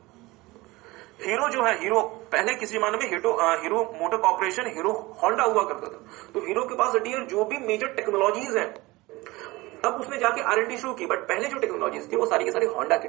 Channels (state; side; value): quieter; left; 21.2 dB